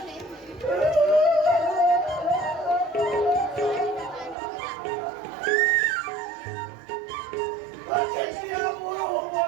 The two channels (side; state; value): left; drops out; at 4.4 s